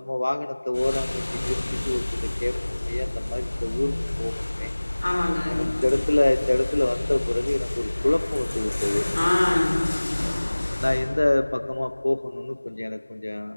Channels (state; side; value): inverted; both; correlation -1.00